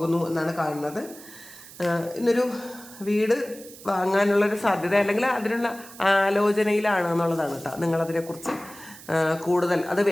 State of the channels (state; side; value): noise; right; hiss, 18 dB below the sound